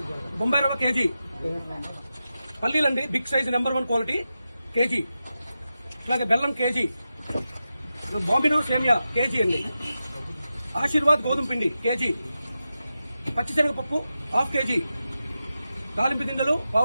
బొంబాయి రవ్వ కేజీ, పల్లీలండి big size number 1 quality KG, అలాగే బెల్లం కేజీ, బాంబినో సేమియా కేజీ అండి, ఆశీర్వాద్ గోధుమ పిండి కేజీ, పచ్చిశనగపప్పు హాఫ్ కేజీ, దాలింపు గింజలు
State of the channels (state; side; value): inverted; both; correlation -0.91